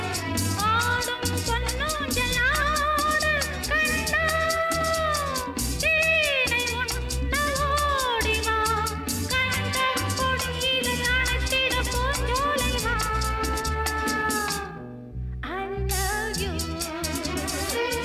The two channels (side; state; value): both; identical; correlation 1.00